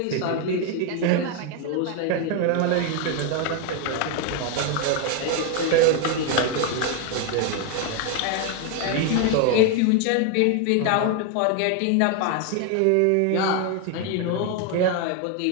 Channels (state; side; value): different; both; correlation 0.01